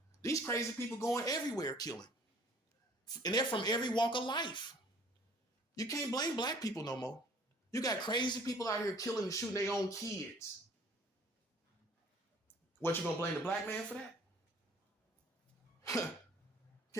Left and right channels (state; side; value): normal; both; correlation 0.54